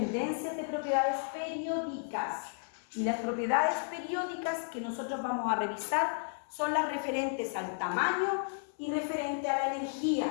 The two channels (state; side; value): silent; right; digital silence